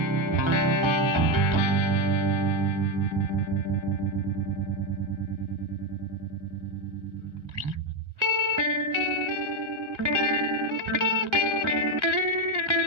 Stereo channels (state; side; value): late; left; 1.3 ms